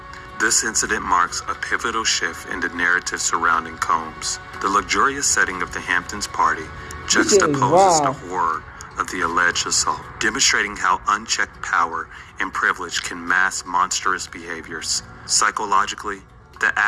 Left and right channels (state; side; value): identical; both; correlation 1.00